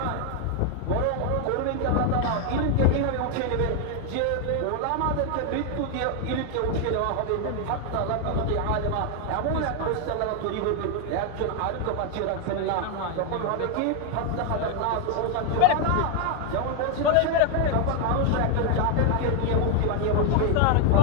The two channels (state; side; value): different; both; correlation 0.01